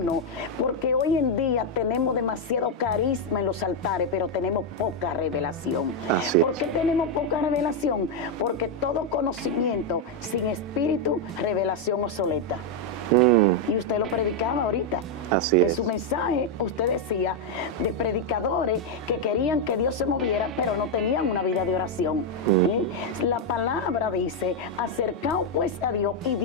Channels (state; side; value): normal; both; correlation 0.02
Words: Porque hoy en día tenemos demasiado carisma en los altares, pero tenemos poca revelación. Así ¿Por es. qué tenemos poca revelación? Porque todo conocimiento sin espíritu, revelación obsoleta. Y usted lo predicaba ahorita. Así en es. su mensaje usted decía de predicadores que querían que Dios se moviera, pero no tenían una vida de oración. La palabra dice, acercaos pues a Dios y